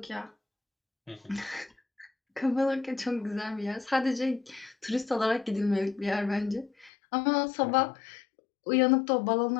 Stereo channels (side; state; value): right; drops out; at 6.9 s